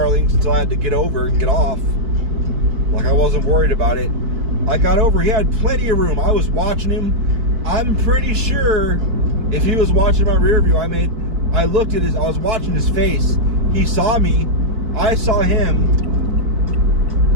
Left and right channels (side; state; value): left; late; 4.5 ms